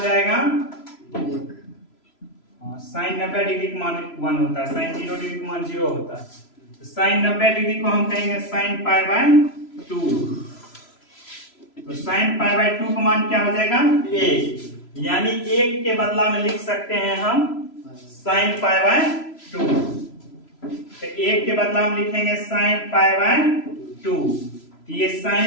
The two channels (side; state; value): right; late; 3.0 ms